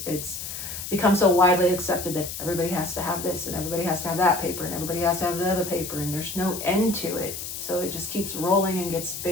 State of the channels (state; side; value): noise; left; hiss, 7 dB below the sound